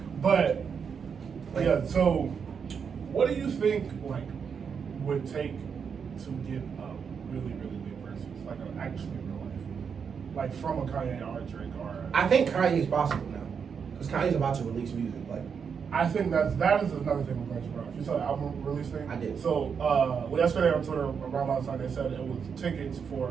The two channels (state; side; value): quieter; left; 6.5 dB